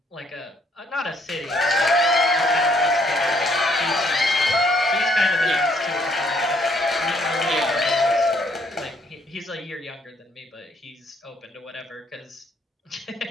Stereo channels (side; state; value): both; normal; correlation 0.67